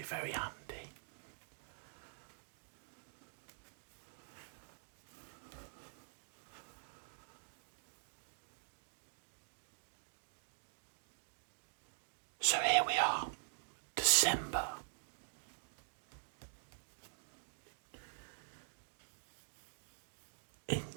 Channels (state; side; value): silent; left; digital silence